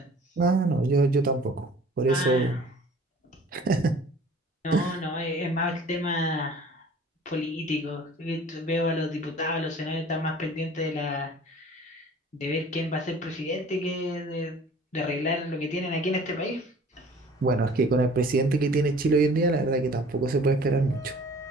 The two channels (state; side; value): normal; both; correlation 0.48